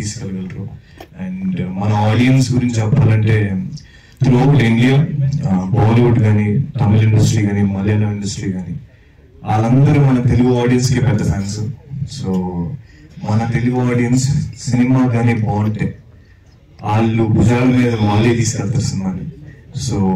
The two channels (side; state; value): both; identical; correlation 1.00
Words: అండ్ మన ఆడియన్స్ గురించి చెప్పాలంటే త్రూఅవుట్ ఇండియా, బాలీవుడ్ కానీ, తమిళ ఇండస్ట్రీ కానీ, మలయాళం ఇండస్ట్రీ కానీ, వాళ్ళందరూ మన తెలుగు ఆడియన్స్కి పెద్ద ఫ్యాన్స్. సో మన తెలుగు ఆడియన్స్ సినిమా కానీ బాగుంటే వాళ్ళు భుజాల మీద వాళ్ళే తీసుకెళ్తారు సినిమాని. సో